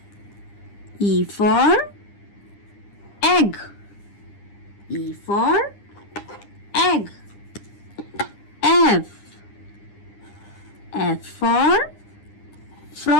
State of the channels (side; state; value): right; late; 9.9 ms